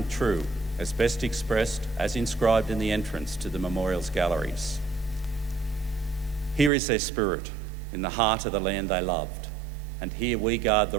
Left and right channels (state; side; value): drops out; left; at 6.7 s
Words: true, as best expressed as inscribed in the entrance to the memorial's galleries. Here is their spirit, in the heart of the land they loved, and here we guard the